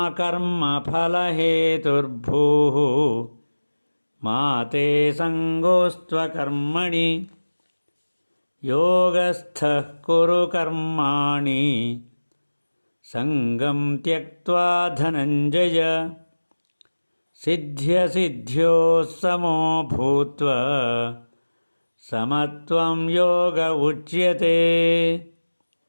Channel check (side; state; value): both; inverted; correlation -1.00